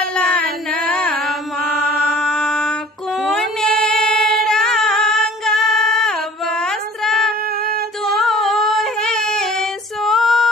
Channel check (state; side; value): normal; both; correlation 0.50